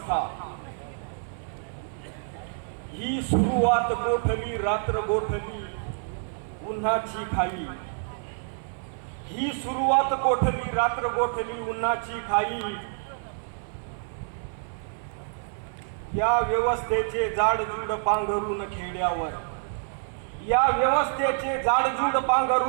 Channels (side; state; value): left; silent; 57 dB below the other